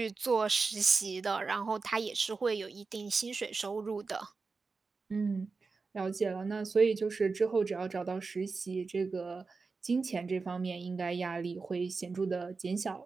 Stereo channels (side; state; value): left; quieter; 4.4 dB